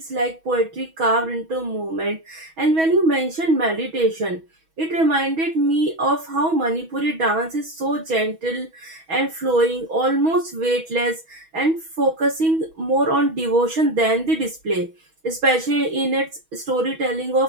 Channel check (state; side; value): late; left; 6.2 ms